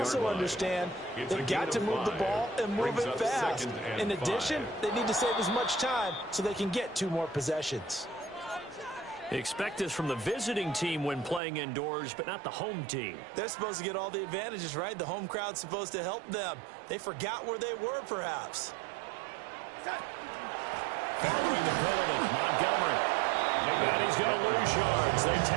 understand they've got to move the ball and move it fast. In addition, they need to save as much time so they can get 2 more possessions. Expect this from the visiting team when playing indoors, but not the home team. They're supposed to get all the advantages, right? The home crowd's supposed to help them. They forgot where they were, perhaps. Following the penalty, Montgomery. And he's going to lose yards. They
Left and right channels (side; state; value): left; drops out; at 11.4 s